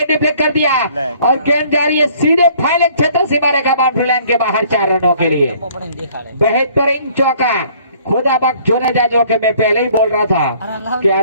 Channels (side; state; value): both; inverted; correlation -0.58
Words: डिफ्लेक्ट कर दिया और गेंद जा रही है सीधे फाइनल क्षेत्र सीमा रेखा बाउंड्री लाइन के बाहर 4 रनों के लिए बेहतरीन चौका खुदा बख्श जोने जा जो कि मैं पहले ही बोल रहा था कि